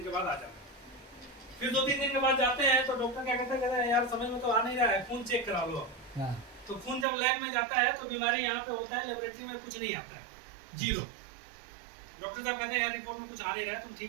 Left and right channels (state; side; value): drops out; left; at 7.1 s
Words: के बाद आ जाना। फिर 2-3 दिन के बाद जाते हैं तो डॉक्टर क्या कहता है, यार समझ में तो आ नहीं रहा है, खून चेक करा लो। हाँ, तो खून जब लैब में जाता है तो बीमारी यहाँ पे होता है, लेबोरेटरी में कुछ नहीं आता है, जीरो। डॉक्टर साहब कहते हैं यार रिपोर्ट में कुछ आ नहीं रहा है, तुम